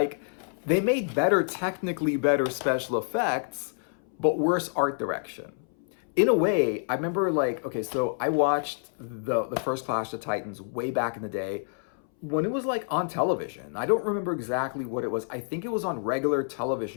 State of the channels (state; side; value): silent; right; 59 dB below the other